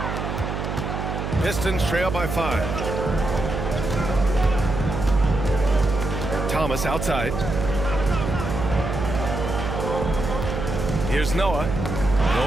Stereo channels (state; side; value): noise; right; hum, 4 dB below the sound